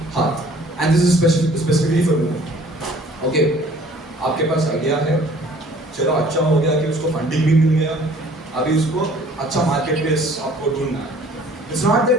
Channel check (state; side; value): normal; both; correlation 0.53